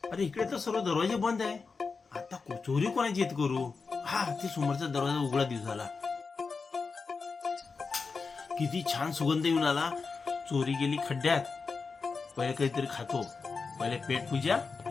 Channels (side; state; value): right; quieter; 4.7 dB